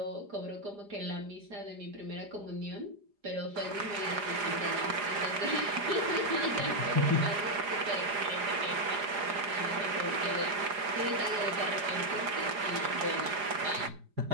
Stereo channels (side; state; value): left; late; 4.9 ms